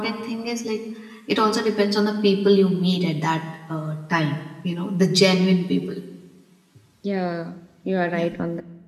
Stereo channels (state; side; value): identical; both; correlation 1.00